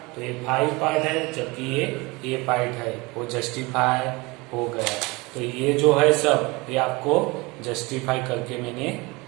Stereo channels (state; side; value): quieter; left; 24.7 dB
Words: तो ये 5 पार्ट है जबकि ये A पार्ट है, वो जस्टिफाई हो गया। तो ये जो है सब ये आपको जस्टिफाई करके मैंने